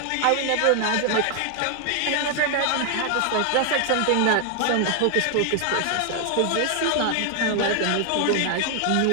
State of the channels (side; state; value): both; different; correlation 0.00